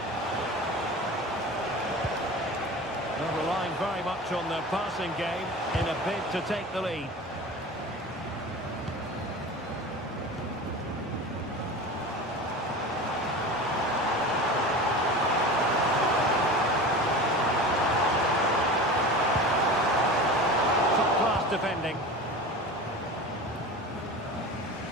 They're relying very much on their passing game in a bid to take the lead. Top-class defending.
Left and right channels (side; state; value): both; normal; correlation 0.33